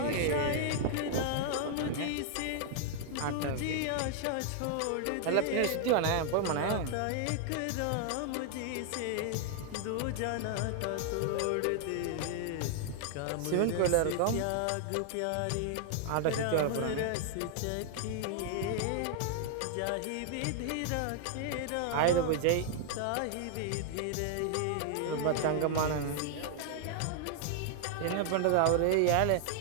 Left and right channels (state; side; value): different; both; correlation 0.00